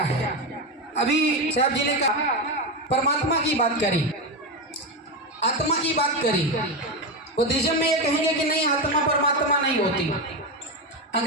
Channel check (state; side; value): normal; both; correlation 0.13